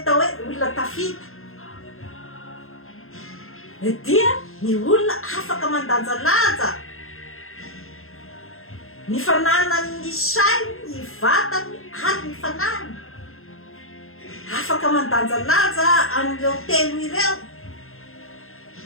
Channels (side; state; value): right; late; 0.61 ms